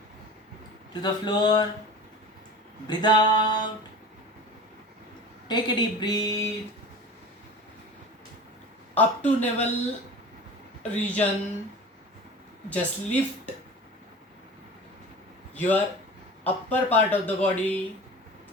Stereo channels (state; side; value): normal; both; correlation 0.36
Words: to the floor, breathe out, take a deep breath, up to navel region, just lift your upper part of the body,